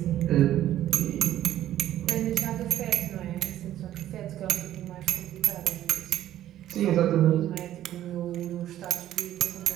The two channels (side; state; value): left; quieter; 12.6 dB